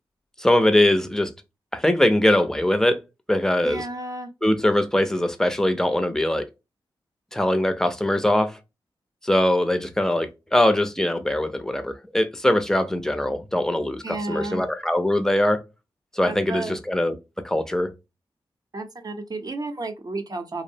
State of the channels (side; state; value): both; normal; correlation 0.94